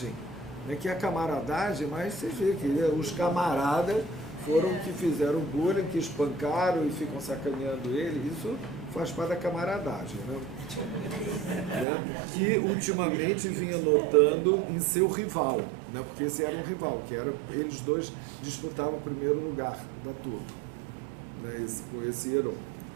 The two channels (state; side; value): drops out; left; at 11.9 s